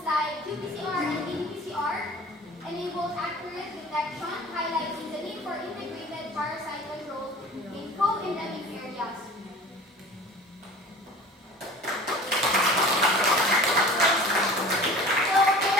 like qPCR and ddPCR enabled accurate detection, highlighting the need for integrated parasite control in co-endemic areas. So, can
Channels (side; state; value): both; normal; correlation 0.42